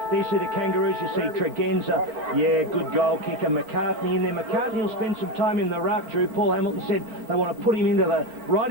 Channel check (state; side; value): late; left; 4.4 ms